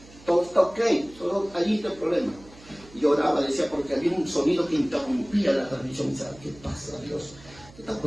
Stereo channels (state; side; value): noise; right; hum, 22 dB below the sound